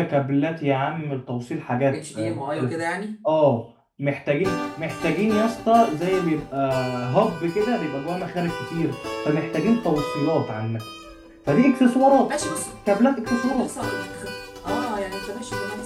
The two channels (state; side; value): identical; both; correlation 1.00